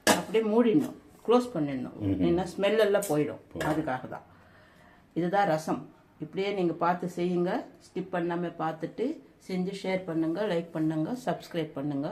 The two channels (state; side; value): identical; both; correlation 1.00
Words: அப்படியே மூடிடணும், க்ளோஸ் பண்ணிடணும். ஏன்னா ஸ்மெல் எல்லாம் போயிடும். அதுக்காக தான். இதுதான் ரசம். இப்படியே நீங்கள் பார்த்து செய்யுங்க. ஸ்கிப் பண்ணாமல் பார்த்துட்டு செஞ்சு ஷேர் பண்ணுங்க, லைக் பண்ணுங்க, சப்ஸ்கிரைப் பண்ணுங்க.